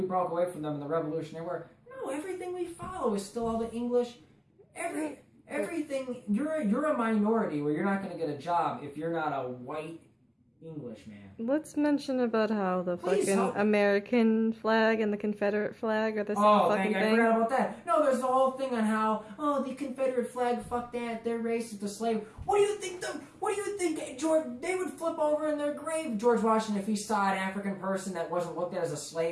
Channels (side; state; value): both; identical; correlation 1.00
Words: broke away from them in the Revolutionary War." No, everything we follow is still all the English. Everything. You're a minority where you're not going to get a job if you're not a white Englishman. Let's mention about how the fucking American flag and the Confederate flag are the same fucking thing. I forgot about that. No, there's the whole thing on how, the Confederate flag, fuck that, they're racist, the slave. What do you think, George, they would flip over in their grave, George Washington, if he saw an African person that wasn't looked at as a